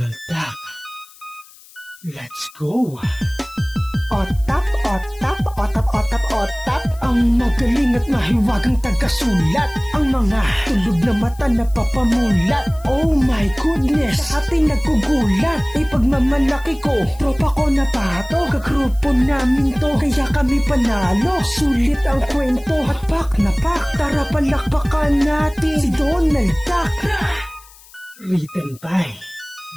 Duck, let's go! Otap, otap, otap, otap, otap. Ang magaling at mahiwagang tagasulat. Ang mga tulog na mata na papamulat. Oh my goodness, sa ating nagkugulat. Ipagmamalaki ko, tropa ko na pato. Kagrupo namin to, kaya kami panalo. Sulit ang kwento at pak na pak. Tara palakpakan natin si Donald Duck. Written by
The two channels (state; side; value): noise; left; hiss, 24 dB below the sound